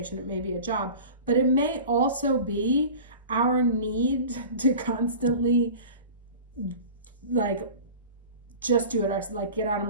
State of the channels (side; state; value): both; inverted; correlation -0.37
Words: it may be a job, but it may also be our need to constantly like just do it ourselves, like get out of